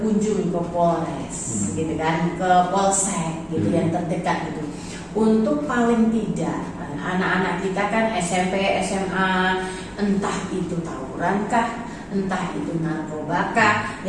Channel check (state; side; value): identical; both; correlation 1.00